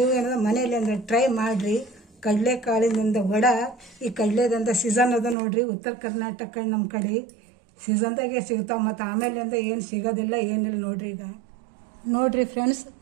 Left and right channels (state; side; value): drops out; left; at 5.4 s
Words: ಏನದ ಮನೆಯಲ್ಲಿ ಅಂದ್ರೆ ಟ್ರೈ ಮಾಡಿರಿ. ಕಡಲೆಕಾಳಿನಿಂದ ವಡ, ಈ ಕಡಲೆದಂದ ಸೀಸನ್ ಅದ ನೋಡ್ರಿ. ಉತ್ತರ ಕರ್ನಾಟಕ ನಮ್ಮ ಕಡೆ ಸೀಸನ್ದಾಗೆ ಸಿಗ್ತಾವೆ. ಮತ್ತು ಆಮೇಲೆ ಅಂತ ಏನು ಸಿಗೋದಿಲ್ಲ, ಏನಿಲ್ಲ ನೋಡ್ರಿ. ಈಗ ನೋಡಿರಿ ಫ್ರೆಂಡ್ಸ್,